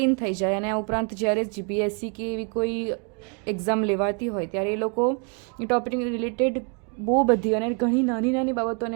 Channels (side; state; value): left; quieter; 37.5 dB